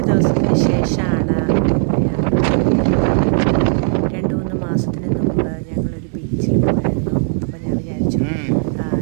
ദിവസത്തിന് ശേഷമാണ് രണ്ട് മൂന്ന് മാസത്തിന് മുമ്പ് ഞങ്ങളൊരു ബീച്ചിൽ പോയായിരുന്നു. അപ്പോൾ ഞാൻ വിചാരിച്ചു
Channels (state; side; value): silent; left; 68 dB below the other